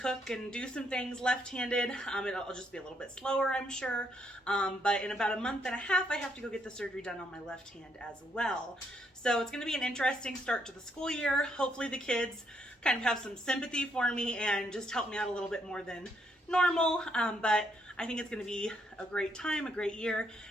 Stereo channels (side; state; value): both; normal; correlation 0.73